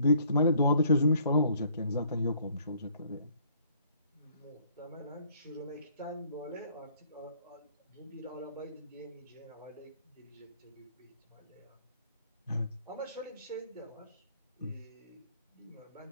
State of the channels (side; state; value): both; inverted; correlation -0.61